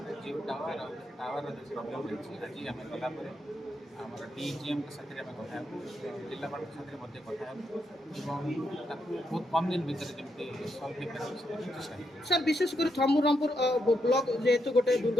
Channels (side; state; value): both; normal; correlation 0.81